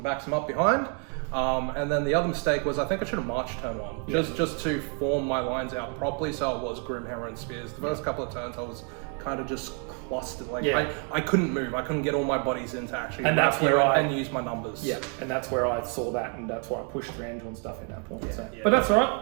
backs him up behind. And then the other mistake was I think I should have marched turn 1, just to form my lines out properly, so it was Grimhammer and spears. The first couple of turns I was kind of just clustered, like I couldn't move, I couldn't get all my bodies in to actually and that's where and use my numbers. Yeah, and that's where I saw that, and that's why I pushed Thranduil and stuff in that point. But that's all right.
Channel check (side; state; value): left; quieter; 40.0 dB